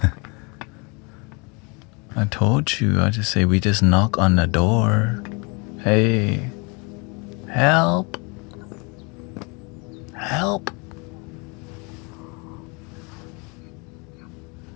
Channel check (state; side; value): quieter; right; 30.6 dB